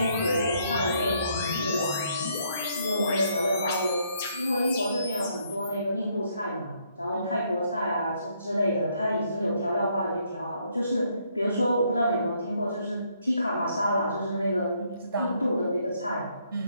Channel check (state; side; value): inverted; both; correlation -0.71